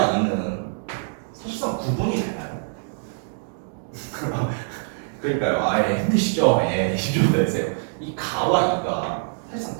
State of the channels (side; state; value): left; silent; digital silence